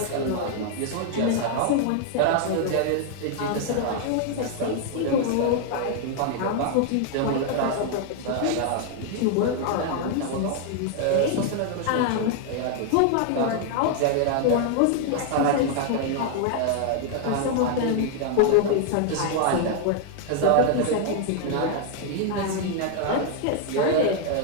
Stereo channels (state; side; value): different; both; correlation 0.00